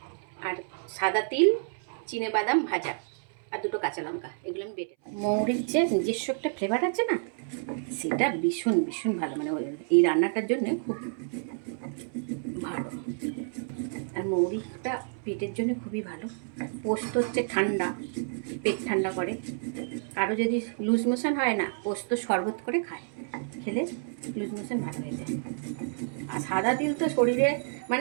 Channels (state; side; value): silent; left; 58 dB below the other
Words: আর সাদা তিল, চিনে বাদাম ভাজা আর দুটো কাঁচা লঙ্কা, এগুলো আমি বেটে। মৌরির যে নিজস্ব একটা ফ্লেভার আছে না, সেটা ভীষণ ভীষণ ভালো, মানে এই রান্নাটার জন্য খুব ভালো। আর মৌরিটা পেটের জন্য খুবই ভালো। পোস্ত হচ্ছে ঠান্ডা, পেট ঠান্ডা করে। কারো যদি লুজ মোশন হয় না, পোস্ত শরবত করে খায়, খেলে লুজ মোশন ভালো হয়ে যায়। আর সাদা তিল তো শরীরে